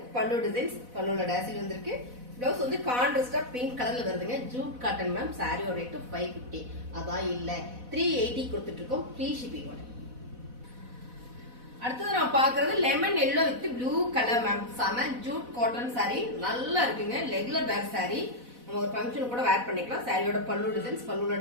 பல்லு டிசைன்ஸ் பல்லுல டாசில் வந்திருக்கு. ப்ளவுஸ் வந்து கான்ட்ராஸ்டா பிங்க் கலர்ல வருதுங்க. ஜூட் காட்டன் மேம் சாரியோட ரேட் 550. அதான் இல்ல 380 கொடுத்துட்டு இருக்கோம் ஃப்ரீ ஷிப்பிங்கோட. அடுத்தது நம்ம பாக்குறது lemon yellow with blue colour ma'am. செம ஜூட் காட்டன் சாரி நல்லா இருக்குங்க. ரெகுலர் வேர் சாரி நம்ம ஒரு ஃபங்க்ஷன் கூட வேர் பண்ணிக்கலாம். சாரியோட பல்லு டிசைன்ஸ் பல்லுல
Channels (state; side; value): late; left; 4.1 ms